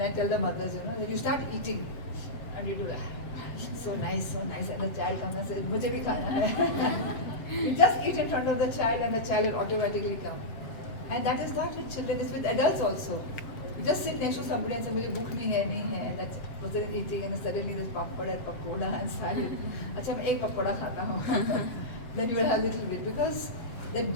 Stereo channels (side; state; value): right; late; 7.9 ms